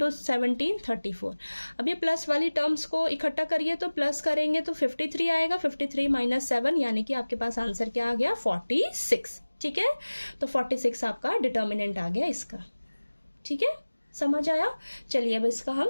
17 34। अब ये प्लस वाली टर्म्स को इकट्ठा करिए, तो प्लस करेंगे तो 53 आएगा, 53 - 7 यानी कि आपके पास आंसर क्या आ गया, 46। ठीक है, तो 46 आपका डिटर्मिनेंट आ गया इसका। ठीक है, समझ आया। चलिए अब इसका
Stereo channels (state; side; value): inverted; both; correlation -1.00